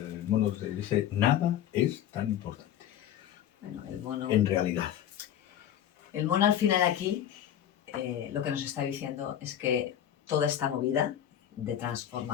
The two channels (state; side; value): quieter; right; 10.7 dB